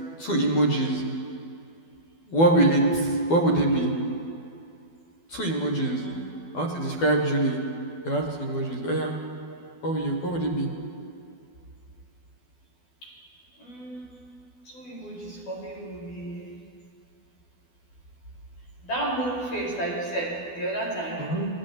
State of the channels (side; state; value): right; late; 12 ms